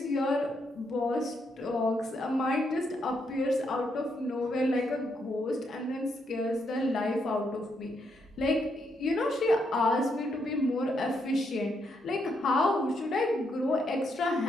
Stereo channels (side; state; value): both; normal; correlation 0.78